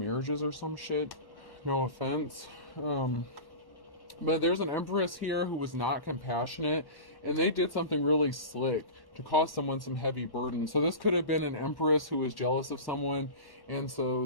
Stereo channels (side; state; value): right; late; 1.1 ms